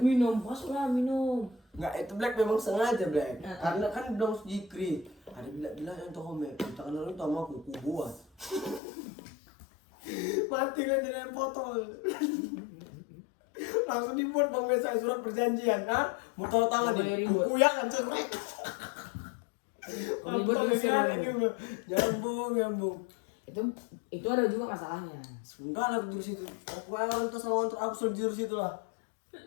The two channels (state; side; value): drops out; right; at 8.8 s